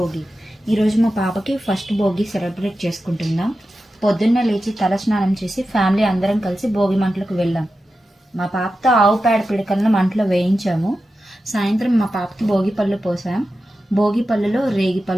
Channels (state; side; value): normal; both; correlation 0.92